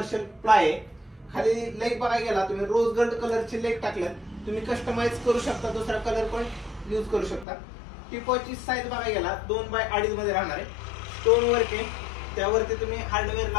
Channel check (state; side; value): drops out; right; at 7.5 s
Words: प्लाय आहे. खाली लेग बघायला गेला तुम्ही रोज गोल्ड कलरचे लेग टाकल्यात. तुम्ही कस्टमाइज करू शकता, दुसरा कलर पण यूज करू शकता. टिपोची साईज बघायला गेला 2 बाय 2.5 मध्ये राहणार आहे. स्टोन वर्क आहे. त्यावरती तुम्ही हार्डवेअर